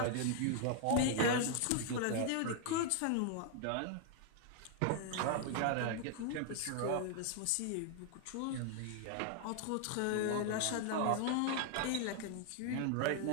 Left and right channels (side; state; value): both; different; correlation 0.00